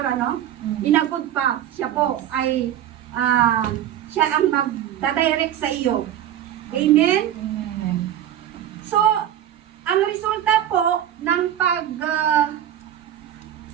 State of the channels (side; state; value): left; quieter; 11.1 dB